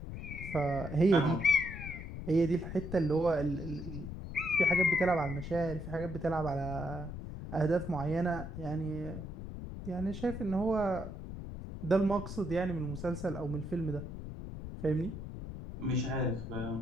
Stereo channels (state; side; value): noise; left; rumble, 8 dB below the sound